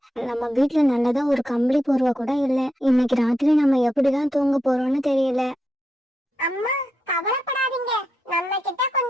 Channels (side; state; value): both; normal; correlation 0.84